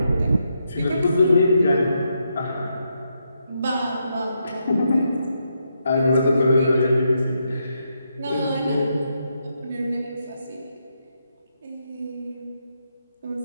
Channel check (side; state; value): both; inverted; correlation -0.81